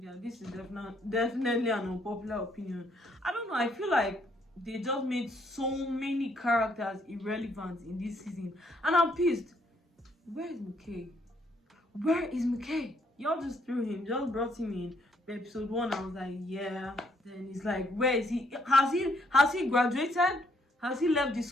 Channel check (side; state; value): both; normal; correlation 0.70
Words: this is definitely an unpopular opinion. I don't know, I feel like they just made so many characters irrelevant in this season. And I'm pissed. Where is McKay? Where is McKay? Y'all just threw him, just brought him in episode 1. I was like, yeah. Then it's like, where is he? Has he graduated? Has he left the